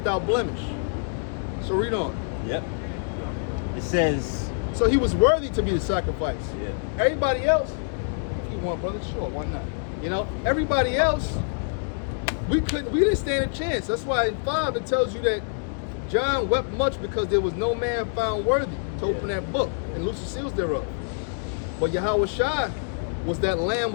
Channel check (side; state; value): right; silent; digital silence